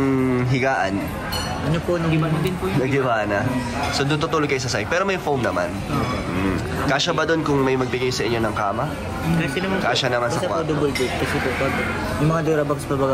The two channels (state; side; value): identical; both; correlation 1.00